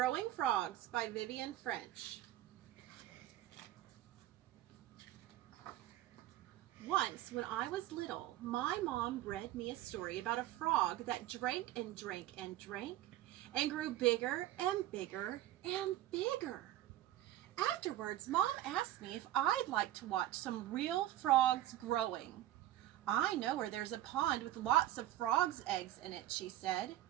Frogs by Vivian French. Once, when I was little, my mom read me a story about a frog that drank and drank and drank and grew bigger and bigger and bigger. Afterwards, Mom asked me if I'd like to watch some real frogs growing. I know where there's a pond with lots of frogs' eggs in it, she said.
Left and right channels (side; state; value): left; quieter; 14.1 dB